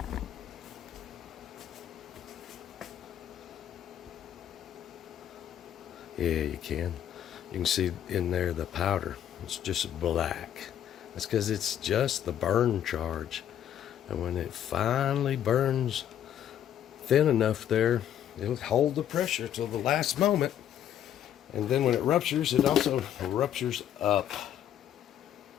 you can. You can see in there the powder. It's just black. That's because it's just the burn charge. And when it finally burns thin enough there, it'll hold the pressure till the last moment. And then when it ruptures, it also ruptures up.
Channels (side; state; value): right; quieter; 10.5 dB